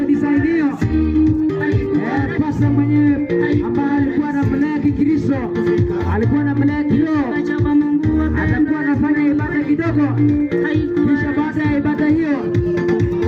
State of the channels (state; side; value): identical; both; correlation 1.00